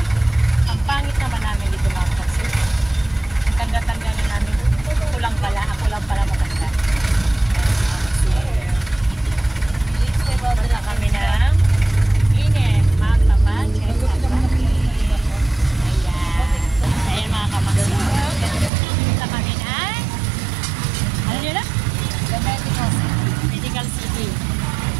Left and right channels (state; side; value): drops out; left; at 18.7 s